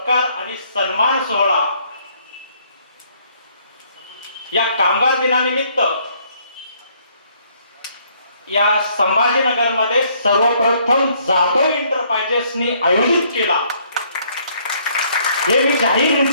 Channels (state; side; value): inverted; both; correlation -0.66